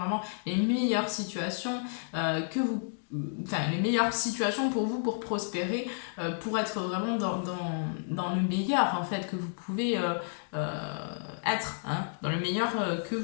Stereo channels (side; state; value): right; silent; digital silence